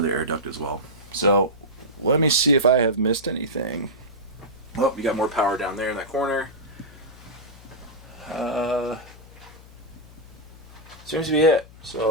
air duct as well. So let me see if I have missed anything. Oh, you got more power down there in that corner. Seems to be it.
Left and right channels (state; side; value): noise; left; hum, 20 dB below the sound